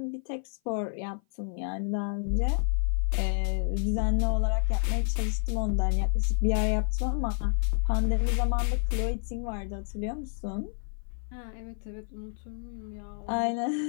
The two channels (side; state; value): right; silent; 55 dB below the other